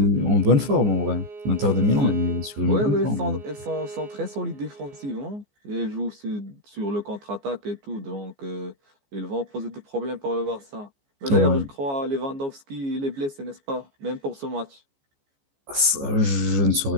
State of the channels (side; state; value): left; late; 14 ms